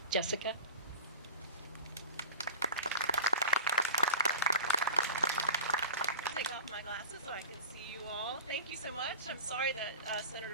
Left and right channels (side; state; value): both; inverted; correlation -0.34